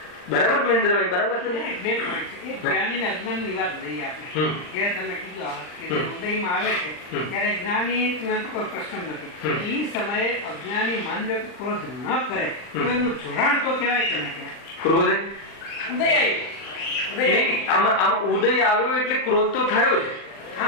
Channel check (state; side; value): late; right; 39 ms